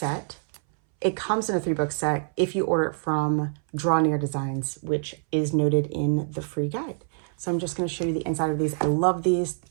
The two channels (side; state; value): left; silent; 61 dB below the other